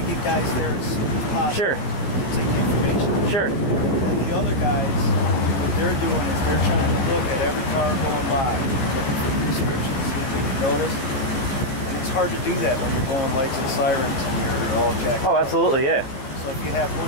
get guys there as soon as possible. Sure. To take the information. Sure. And the other guys, what they're doing is they're trying to look at every car going by, looking for the descriptions, see if they can notice. And it's hard to do that when you're going lights and sirens and you're all jacked up. Oh, absolutely, yeah. So if you have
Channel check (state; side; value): late; right; 15 ms